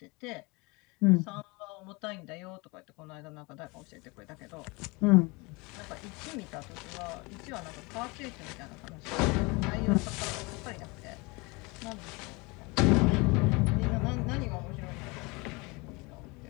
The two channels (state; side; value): quieter; right; 26.6 dB